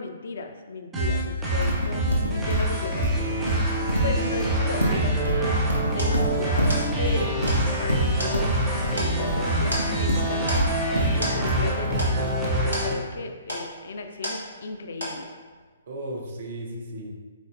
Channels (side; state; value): both; inverted; correlation -0.44